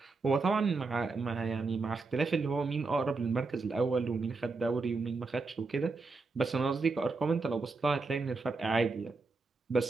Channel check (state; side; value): quieter; left; 3.9 dB